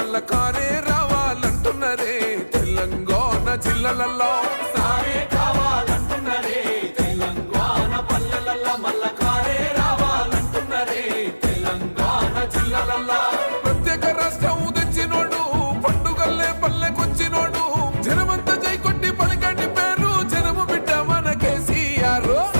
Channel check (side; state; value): both; inverted; correlation -1.00